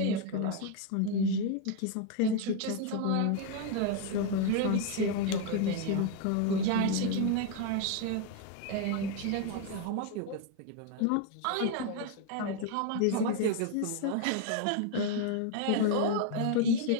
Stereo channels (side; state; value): both; different; correlation 0.01